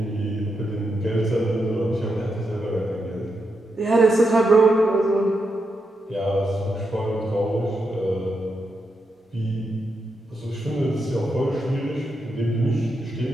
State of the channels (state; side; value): normal; both; correlation 0.84